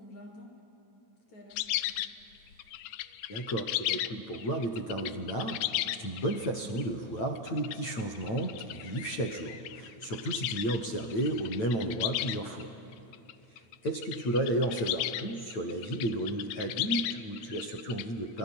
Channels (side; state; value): right; late; 9.0 ms